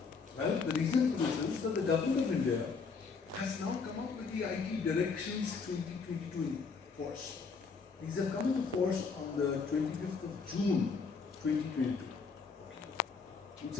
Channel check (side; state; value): right; quieter; 5.0 dB